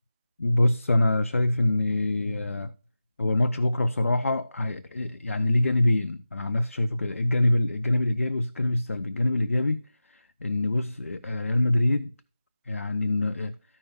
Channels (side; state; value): both; inverted; correlation -0.95